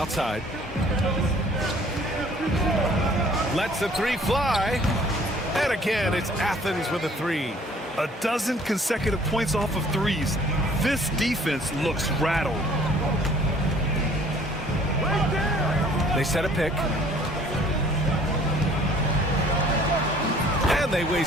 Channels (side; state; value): both; normal; correlation 0.55